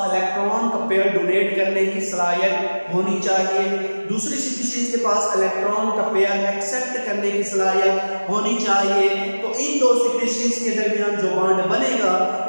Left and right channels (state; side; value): inverted; both; correlation -1.00